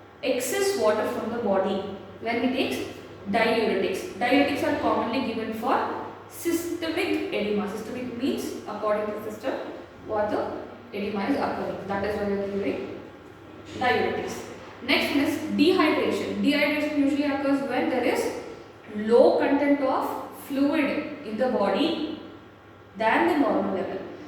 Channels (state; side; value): identical; both; correlation 1.00